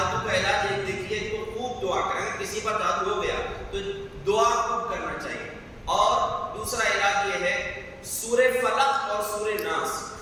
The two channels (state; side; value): identical; both; correlation 1.00